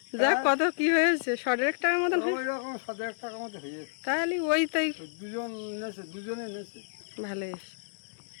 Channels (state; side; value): silent; right; digital silence